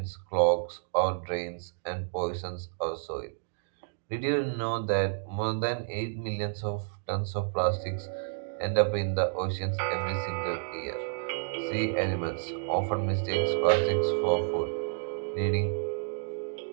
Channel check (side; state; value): left; silent; digital silence